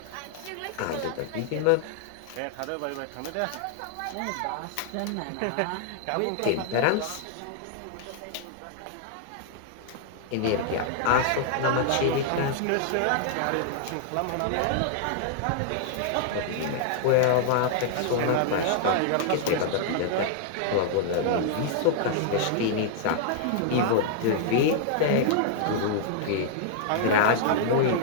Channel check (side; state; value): both; different; correlation -0.01